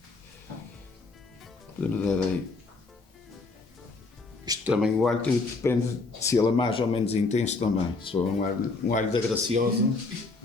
Podemos dar aí. Isto também, o alho depende se ele é mais ou menos intenso também. Se for um alho da Graciosa,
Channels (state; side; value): quieter; right; 3.7 dB